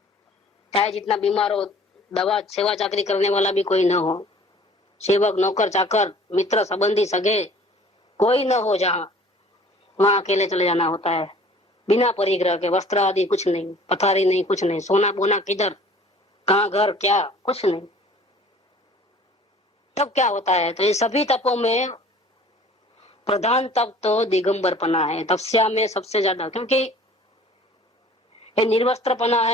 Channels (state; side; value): normal; both; correlation 0.50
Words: चाहे जितना बीमार हो, दवा सेवा चाकरी करने वाला भी कोई न हो, सेवक नौकर चाकर मित्र संबंधी सगे कोई न हो, जहाँ वहां अकेले चले जाना होता है, बिना परिग्रह के, वस्त्र आदि कुछ नहीं, पथारी नहीं, कुछ नहीं, सोना बोना किधर, कहाँ घर क्या, कुछ नहीं। तब क्या होता है, तो ये सभी तपों में प्रधान तप तो दिगंबरपना है, तपस्या में सबसे ज्यादा, क्योंकि ये निर्वस्त्रपना